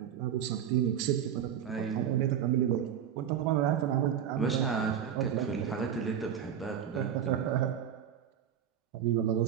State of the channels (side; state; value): left; quieter; 9.0 dB